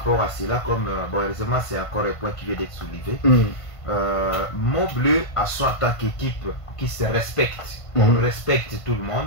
à cela, comme bon, heureusement c'est encore un point qui vient d'être soulevé. Montbleu a son en tant qu'équipe qui se respecte. On respecte tout le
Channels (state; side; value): late; right; 1.5 ms